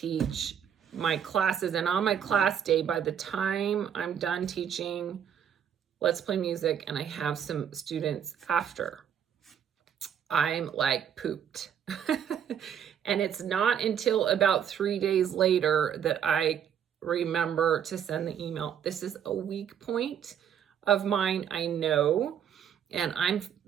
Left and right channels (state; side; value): quieter; left; 8.7 dB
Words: my classes, and on my class day, by the time I'm done teaching Let's Play Music and I have some students after, I'm like pooped. And it's not until about 3 days later that I remember to send the email. This is a weak point of mine, I know, and I'm